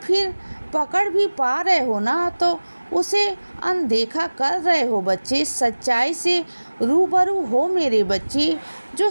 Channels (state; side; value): inverted; both; correlation -1.00